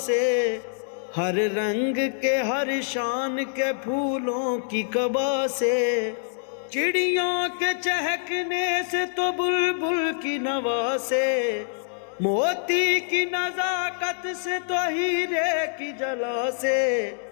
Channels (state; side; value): silent; right; digital silence